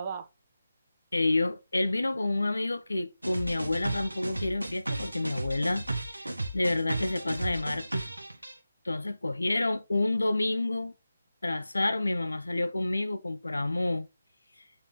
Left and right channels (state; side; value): inverted; both; correlation -0.96